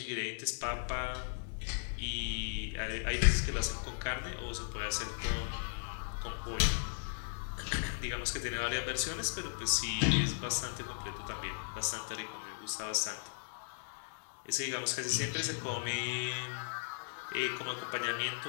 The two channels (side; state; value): right; silent; digital silence